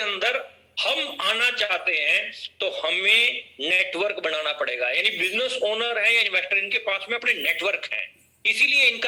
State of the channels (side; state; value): both; identical; correlation 1.00